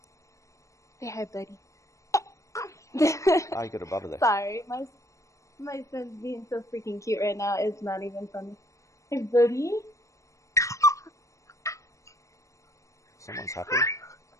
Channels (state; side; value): late; right; 0.15 ms